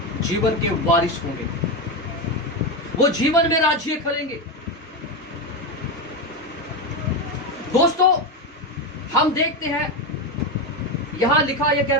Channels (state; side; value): normal; both; correlation 0.13